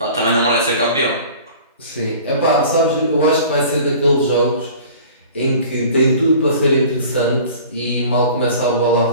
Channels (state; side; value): inverted; both; correlation -0.45